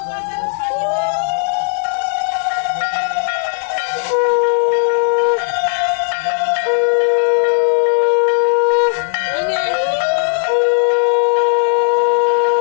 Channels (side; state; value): right; silent; digital silence